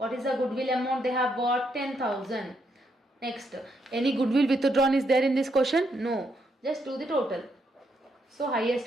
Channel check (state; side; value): normal; both; correlation 0.77